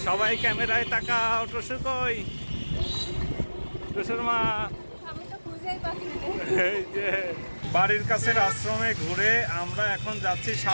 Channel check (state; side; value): inverted; both; correlation -1.00